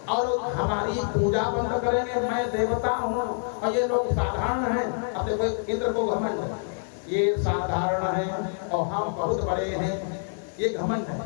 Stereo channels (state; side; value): silent; right; digital silence